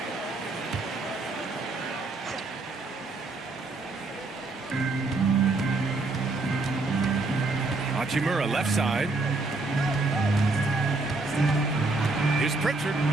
Hachimura left side. Here's Pritchard.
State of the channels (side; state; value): left; quieter; 3.4 dB